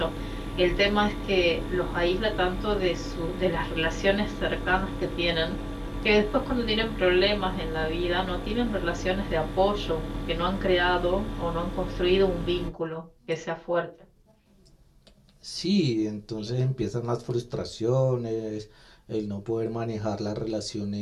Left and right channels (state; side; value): identical; both; correlation 1.00